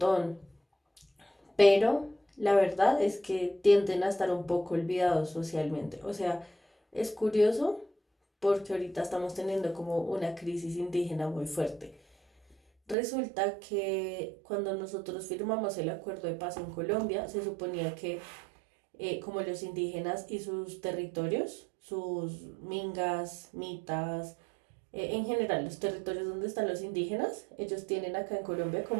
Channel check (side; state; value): left; drops out; at 13.0 s